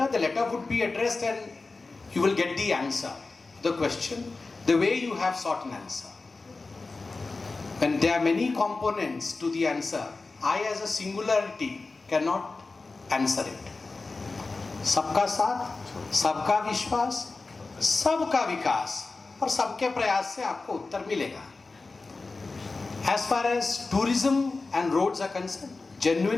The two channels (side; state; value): right; quieter; 3.7 dB